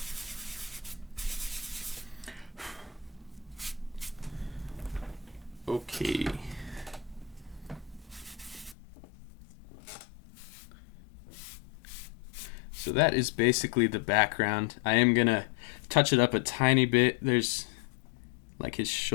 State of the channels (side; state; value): right; drops out; at 8.8 s